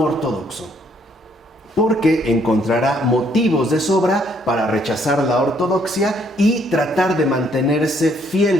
ortodoxo, porque encontrará motivos de sobra para rechazar la ortodoxia y tratar de mantenerse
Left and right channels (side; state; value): both; normal; correlation 0.68